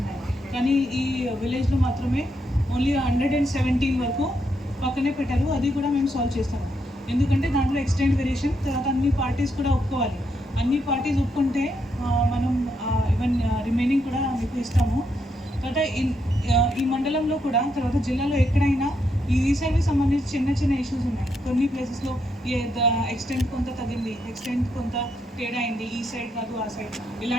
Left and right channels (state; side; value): normal; both; correlation 0.79